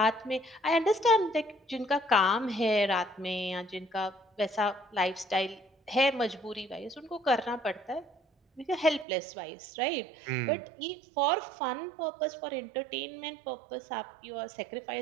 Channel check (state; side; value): drops out; left; at 9.1 s